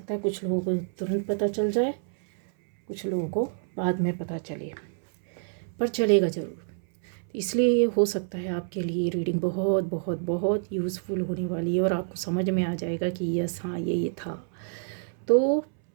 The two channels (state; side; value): silent; left; 60 dB below the other